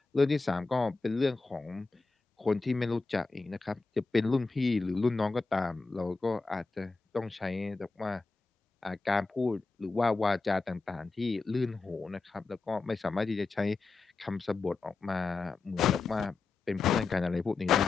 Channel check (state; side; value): quieter; right; 4.0 dB